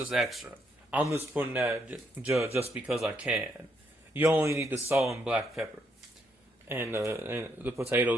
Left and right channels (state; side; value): normal; both; correlation 0.75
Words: extra. I'm just putting that just because I can. You only need the salt and black pepper, and the